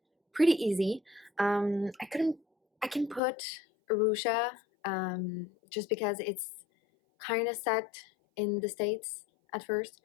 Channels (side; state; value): right; drops out; at 3.2 s